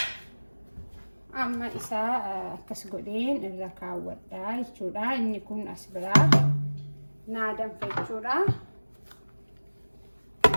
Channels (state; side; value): inverted; both; correlation -1.00